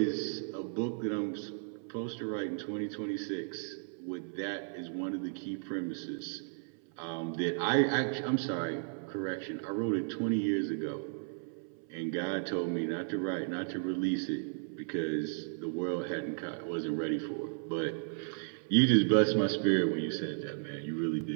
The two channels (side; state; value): left; silent; 55 dB below the other